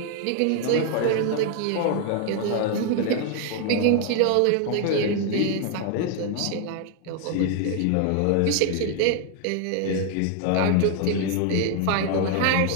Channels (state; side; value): different; both; correlation 0.00